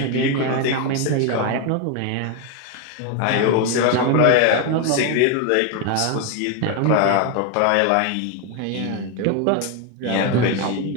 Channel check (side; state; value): both; different; correlation 0.01